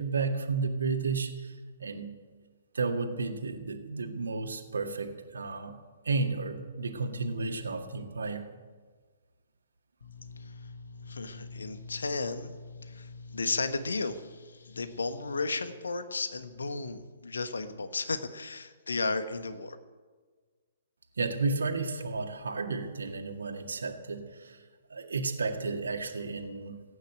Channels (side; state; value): both; inverted; correlation -0.67